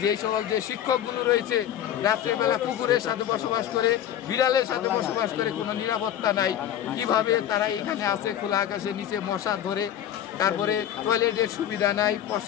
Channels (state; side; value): quieter; right; 10.8 dB